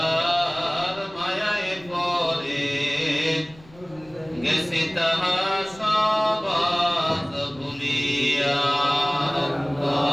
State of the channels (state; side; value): noise; left; rumble, 24 dB below the sound